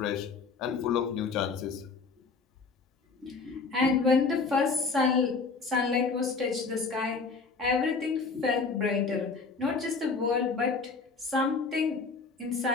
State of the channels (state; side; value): quieter; right; 4.5 dB